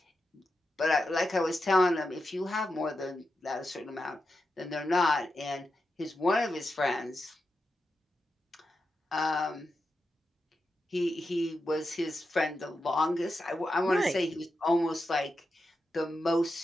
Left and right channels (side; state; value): both; normal; correlation 0.88